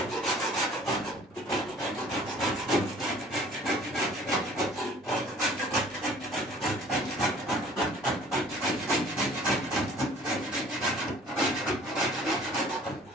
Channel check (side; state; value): both; normal; correlation 0.52